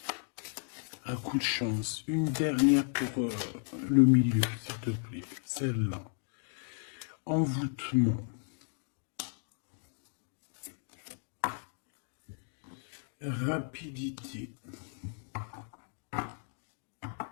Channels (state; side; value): silent; right; 55 dB below the other